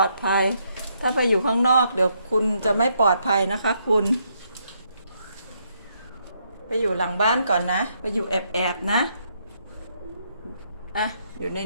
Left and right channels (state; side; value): inverted; both; correlation -0.75